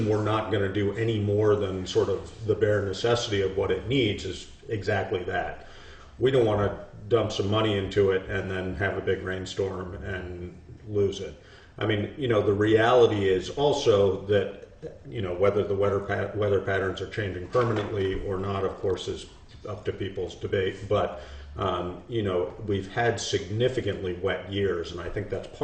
we're not going to do any more than sort of the bare necessity of what it needs is exactly that. We don't want to dump some money into it and then have a big rainstorm and lose it. I mean, the reality is also that, whether the weather patterns are changing permanently or not, of course, is up to people's debate. But You know, we've had significantly wet years, and I think that's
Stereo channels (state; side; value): identical; both; correlation 1.00